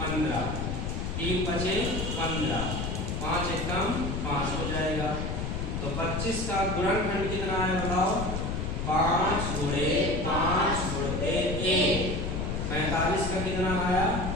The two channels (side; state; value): left; noise; rumble, 2 dB below the sound